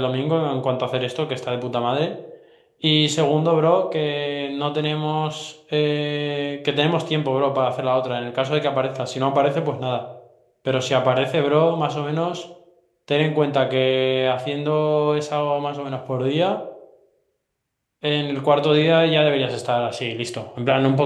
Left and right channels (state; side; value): identical; both; correlation 1.00